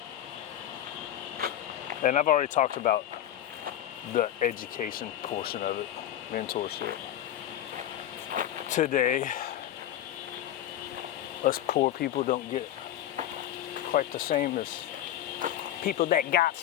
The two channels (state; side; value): quieter; right; 11.9 dB